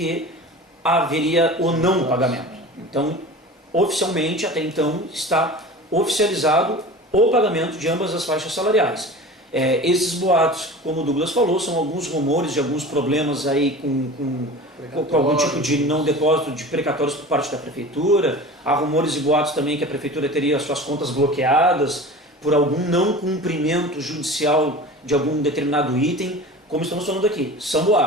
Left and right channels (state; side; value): normal; both; correlation 0.36